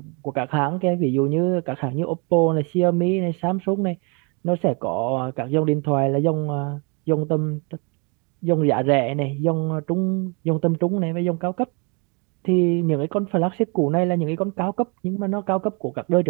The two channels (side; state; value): left; quieter; 33.2 dB